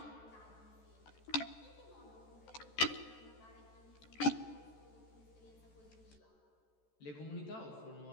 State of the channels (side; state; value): right; late; 14 ms